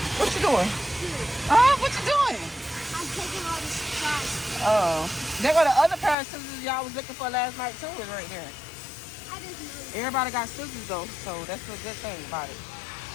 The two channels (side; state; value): right; drops out; at 6.2 s